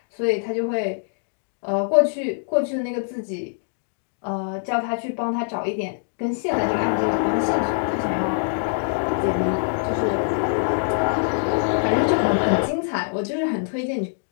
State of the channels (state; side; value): silent; right; digital silence